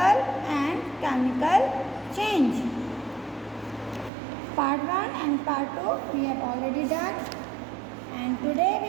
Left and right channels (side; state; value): left; drops out; at 4.1 s